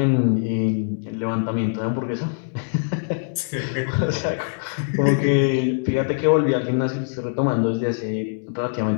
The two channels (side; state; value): right; silent; digital silence